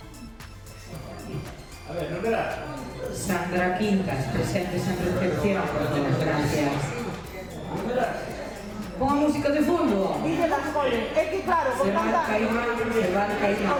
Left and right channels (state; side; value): identical; both; correlation 1.00